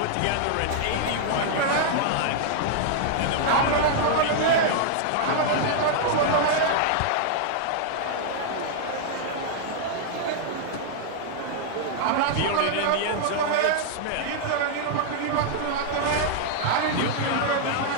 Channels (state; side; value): different; both; correlation -0.01